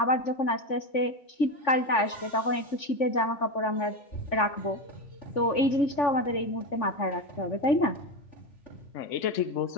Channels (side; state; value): right; late; 3.5 ms